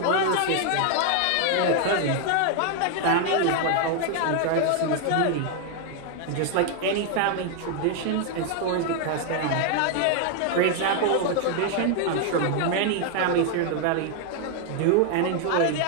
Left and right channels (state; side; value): different; both; correlation 0.00